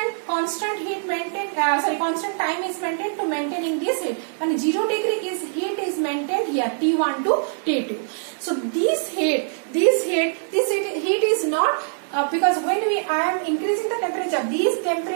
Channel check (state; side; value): silent; left; digital silence